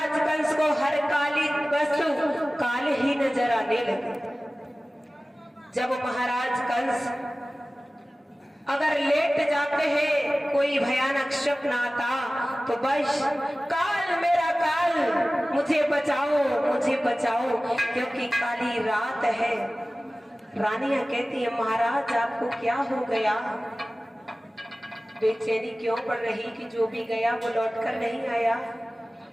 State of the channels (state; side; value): normal; both; correlation 0.97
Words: कंस को हर काली वस्तु काल ही नजर आने लगी। जब महाराज कंस अगर लेट जाते हैं, कोई भयानक स्वप्न आता तो बस काल मेरा काल, मुझे बचाओ क्योंकि काली रात है। रानियां कहती है महाराज आपको क्या हो गया, बेचैनी क्यों पड़ रही कि जो भी गया वो लौटकर नहीं आया।